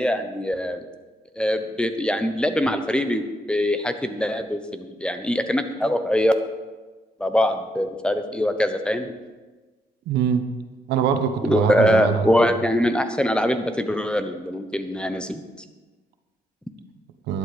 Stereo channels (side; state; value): both; normal; correlation 0.78